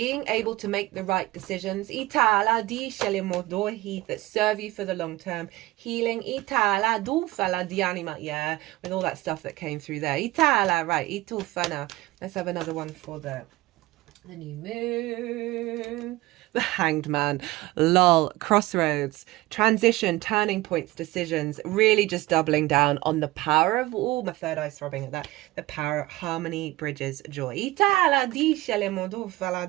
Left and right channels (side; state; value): left; quieter; 18.9 dB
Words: able to make the right decisions that serve you for the long term. Healing with all that stuff that came through there. Right, let's have another one for the new moon. The Hanged Man. Lol. Crossroads. Transition, turning points, decisions. Really just doubling down on the power of, oh, my third eye's throbbing at that. The power of harmony, bridges, joy.